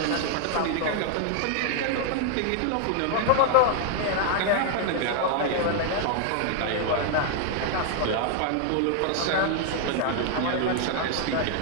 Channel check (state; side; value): different; both; correlation 0.00